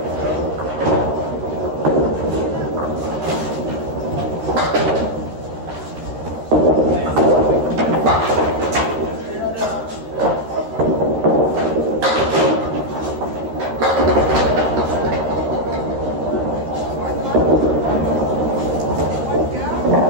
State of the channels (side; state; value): left; late; 13 ms